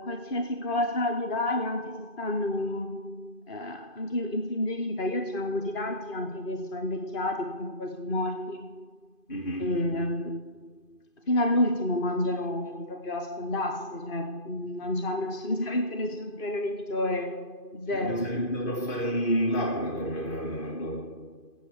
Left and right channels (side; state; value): right; late; 2.5 ms